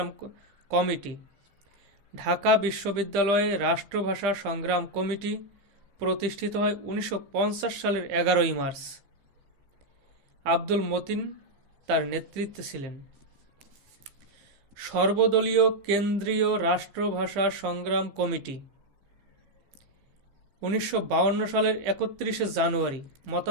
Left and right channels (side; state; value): left; late; 15 ms